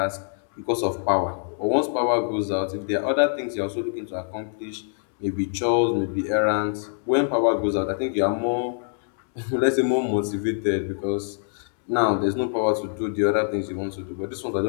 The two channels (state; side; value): silent; right; 62 dB below the other